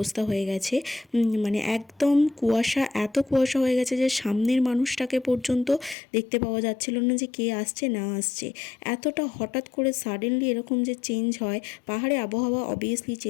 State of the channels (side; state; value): right; drops out; at 6.0 s